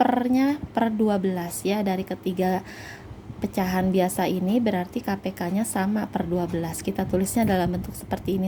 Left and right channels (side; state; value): both; identical; correlation 1.00